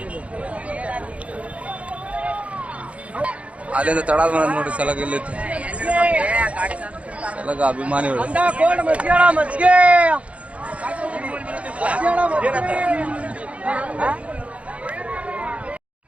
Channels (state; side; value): late; left; 0.064 ms